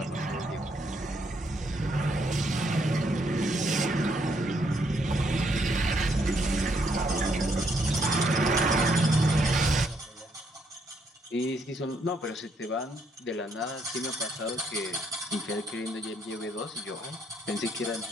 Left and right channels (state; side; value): normal; both; correlation 0.73